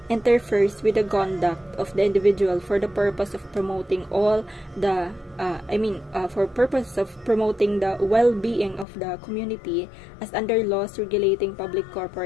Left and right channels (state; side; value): drops out; right; at 8.8 s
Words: interferes with the conduct of the individual for the purpose of promoting the well-being of the community, as under laws regulating public